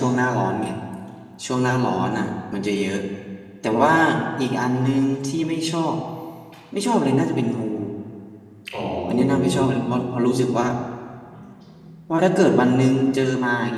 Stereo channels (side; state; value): both; identical; correlation 1.00